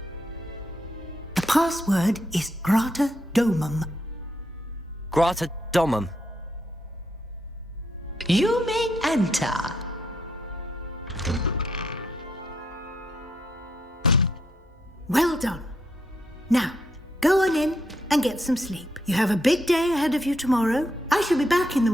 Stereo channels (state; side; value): normal; both; correlation 0.77